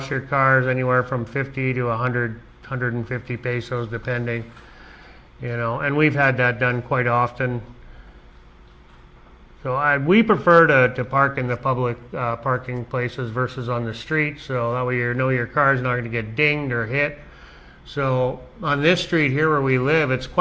your cars, anywhere from 50 to 100, 150 pesos, depending. And we've had that done quite often. So we prefer to park in the public parking places versus on the street, so that way your car's not going to get dinged or hit. So on this street here where we live, it's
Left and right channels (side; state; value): both; identical; correlation 1.00